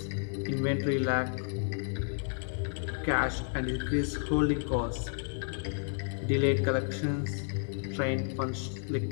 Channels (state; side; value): silent; right; 57 dB below the other